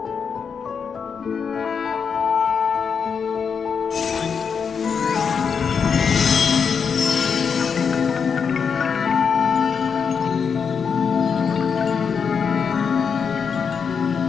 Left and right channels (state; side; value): quieter; right; 6.3 dB